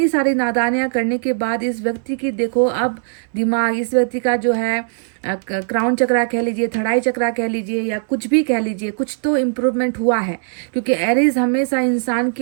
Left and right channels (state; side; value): silent; left; 66 dB below the other